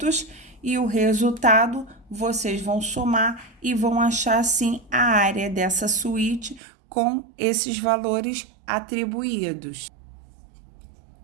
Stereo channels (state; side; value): drops out; left; at 6.6 s